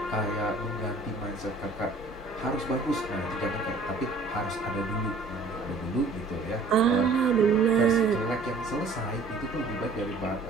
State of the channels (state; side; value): quieter; left; 3.5 dB